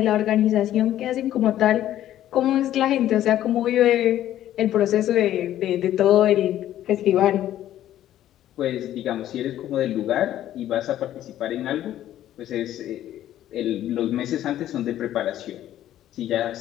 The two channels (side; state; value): right; quieter; 12.5 dB